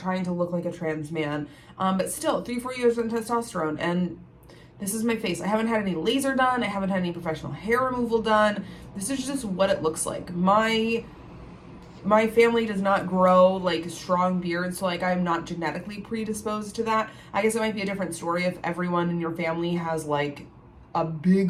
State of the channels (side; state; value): both; identical; correlation 1.00